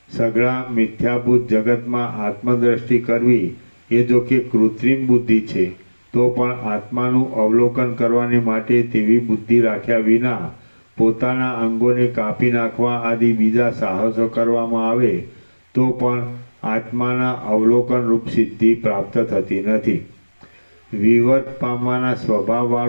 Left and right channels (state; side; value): inverted; both; correlation -1.00